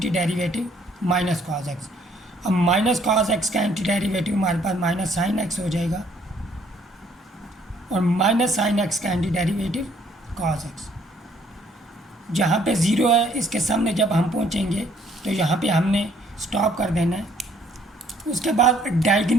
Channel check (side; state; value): both; normal; correlation 0.64